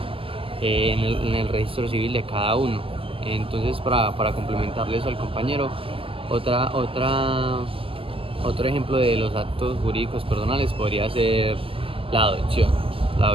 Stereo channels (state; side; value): late; left; 0.26 ms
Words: en el registro civil de cada uno. Entonces, para complementarle eso al compañero, otro ejemplo de los actos jurídicos personales podría ser la